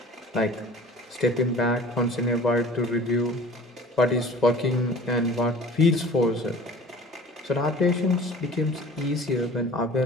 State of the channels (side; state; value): both; normal; correlation 0.45